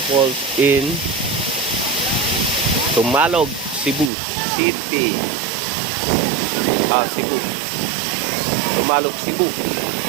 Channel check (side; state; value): left; drops out; at 4.1 s